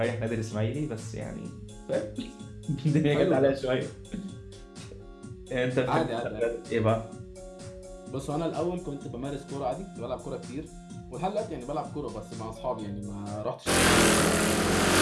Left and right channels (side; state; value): both; identical; correlation 1.00